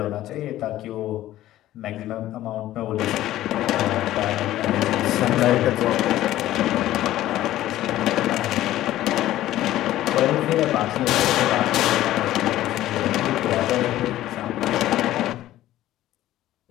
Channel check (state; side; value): quieter; right; 14.3 dB